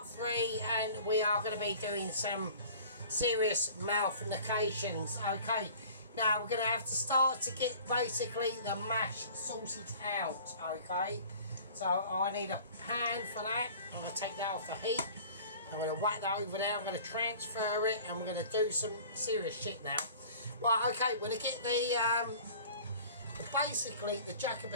3 and we are going to be doing some serious malformations. Okay, now we're going to have to start to get basically the mash sorted out. Okay, so I need a pan for that. I'm going to take that off the heat. I'm going to whack that over there. I'm going to transfer it and we're going to do some serious shit now. Right, okay, we're going to get basically the jack of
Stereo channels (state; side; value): inverted; both; correlation -0.46